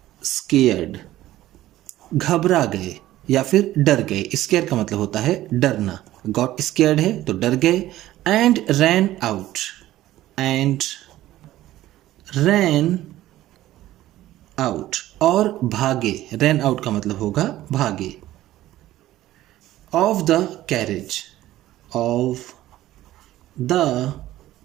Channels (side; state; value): left; quieter; 14.8 dB